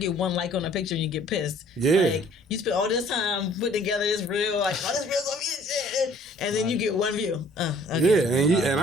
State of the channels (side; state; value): both; normal; correlation 0.56